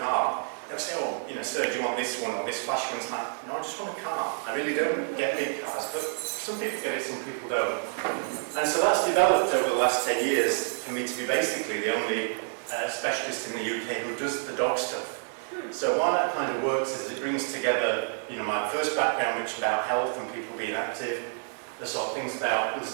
they'll say, oh, sir, do you want this one or this flash one? It's like, no, I just want a car. I really don't get big cars, but some people get it, some people don't. And so that's developed over the last 10 years for me to be basically the only specialist in the UK who does the dog stuff. So why that kind of works is it brings together, my first background, which is about health and people being active, the sort of things about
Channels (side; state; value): left; silent; 59 dB below the other